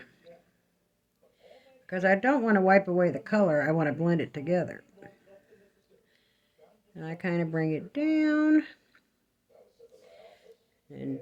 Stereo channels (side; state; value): both; identical; correlation 1.00